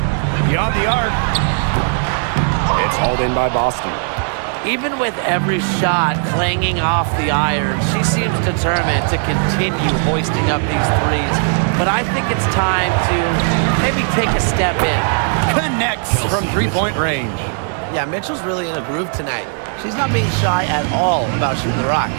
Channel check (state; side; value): silent; left; 56 dB below the other